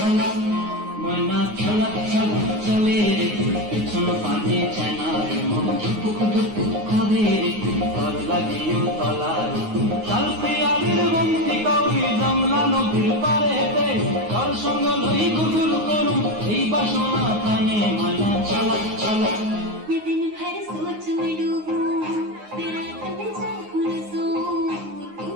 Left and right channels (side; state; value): left; late; 9.6 ms